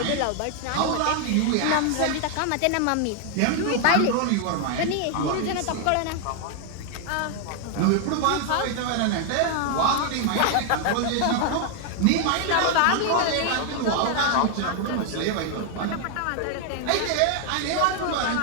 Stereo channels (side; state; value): both; different; correlation 0.00